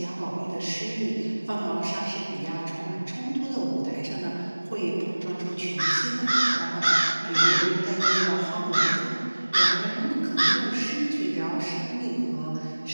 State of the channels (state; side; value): inverted; both; correlation -1.00